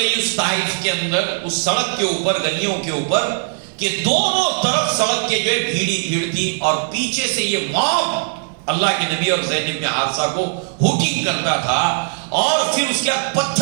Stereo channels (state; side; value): silent; left; digital silence